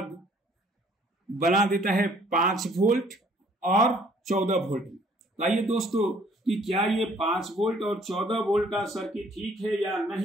बना देता है 5 वोल्ट और 14 वोल्ट। आइए दोस्तों कि क्या ये 5 वोल्ट और 14 वोल्ट का सर्किट ठीक है या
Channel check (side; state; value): both; normal; correlation 0.60